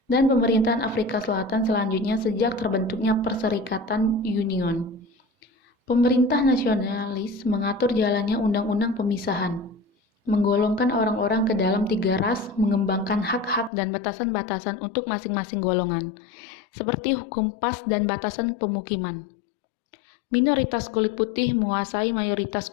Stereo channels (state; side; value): drops out; right; at 13.7 s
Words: Dan pemerintahan Afrika Selatan selanjutnya sejak terbentuknya Perserikatan Union. Pemerintah nasionalis mengatur jalannya undang-undang pemisahan, menggolongkan orang-orang ke dalam 3 ras, mengembangkan hak-hak dan batasan-batasan untuk masing-masing golongan, seperti hukum pas dan batasan pemukiman. Minoritas kulit putih menguasai mayoritas